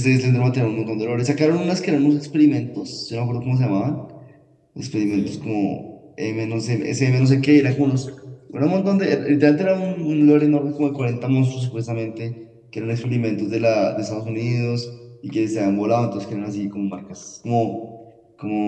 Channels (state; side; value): identical; both; correlation 1.00